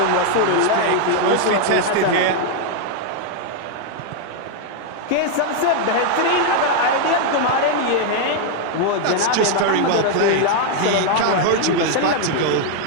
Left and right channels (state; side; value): different; both; correlation 0.00